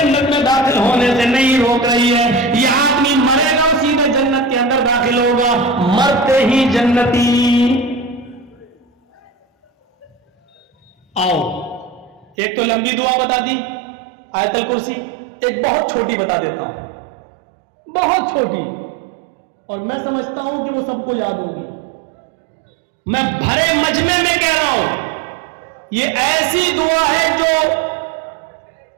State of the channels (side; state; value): left; drops out; at 12.4 s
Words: میں داخل ہونے سے نہیں روک رہی ہے. یہ آدمی مرے گا سیدھے جنت کے اندر داخل ہوگا، مرتے ہی جنتی. آؤ، ایک تو لمبی دعا بتا دی آیت الکرسی، ایک بہت چھوٹی بتا دیتا ہوں، بہت چھوٹی، اور میں سمجھتا ہوں کہ وہ سب کو یاد ہوگی. میں بھرے مجمع میں کہہ رہا ہوں، یہ ایسی دعا ہے جو